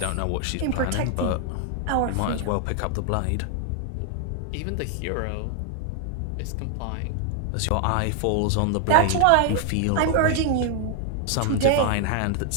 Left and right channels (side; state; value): both; different; correlation 0.00